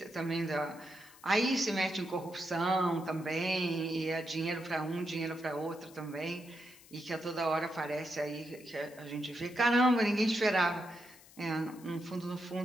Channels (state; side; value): noise; left; hiss, 22 dB below the sound